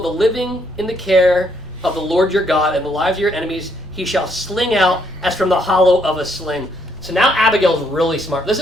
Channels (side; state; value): both; normal; correlation 0.71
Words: the living in the care of the Lord your God, and the lives of your enemies he shall sling out as from the hollow of a sling. So now Abigail's really smart. This